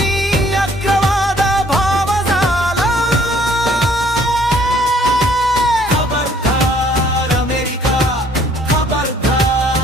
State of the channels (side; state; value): both; normal; correlation 0.61